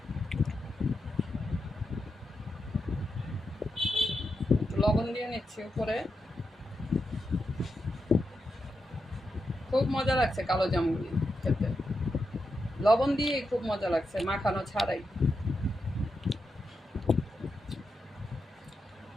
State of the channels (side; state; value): both; normal; correlation 0.86